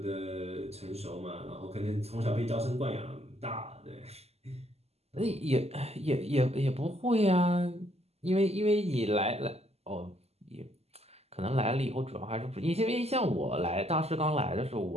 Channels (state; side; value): late; left; 0.30 ms